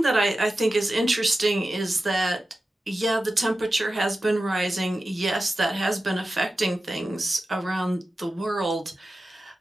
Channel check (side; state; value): both; normal; correlation 0.93